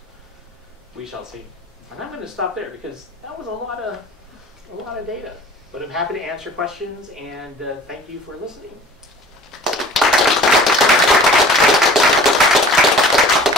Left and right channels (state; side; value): normal; both; correlation 0.45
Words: We shall see. And I'm going to stop there because that was a lot of data. But I'm happy to answer questions, and thank you for listening.